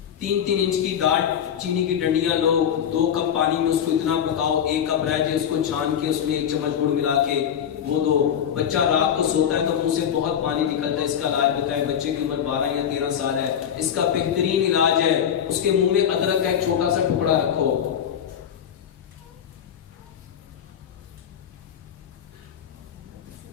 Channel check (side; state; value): right; quieter; 8.9 dB